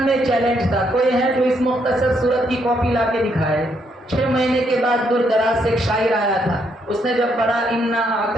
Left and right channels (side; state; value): both; normal; correlation 0.74